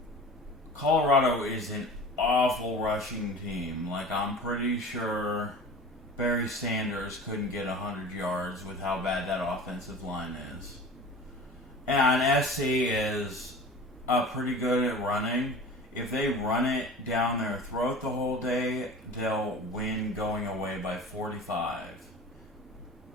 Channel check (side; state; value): both; normal; correlation 0.39